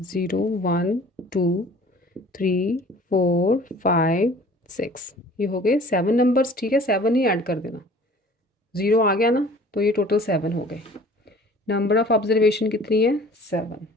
0 1 2 3 4 5 6, ये हो गए 7 नंबर्स, ठीक है। 7 ही ऐड कर देना, 0 आ गया ना, तो ये टोटल 7 हो गए। नंबर ऑफ ऑब्जर्वेशन कितनी है? 7।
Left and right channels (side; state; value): both; normal; correlation 0.49